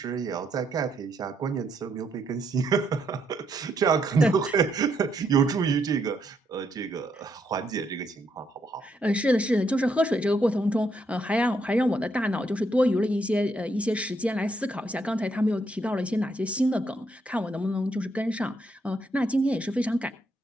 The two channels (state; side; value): normal; both; correlation 0.76